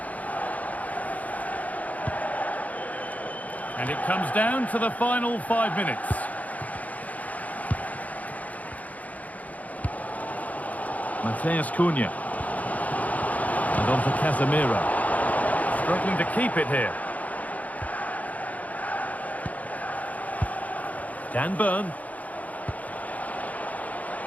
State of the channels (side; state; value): right; late; 0.074 ms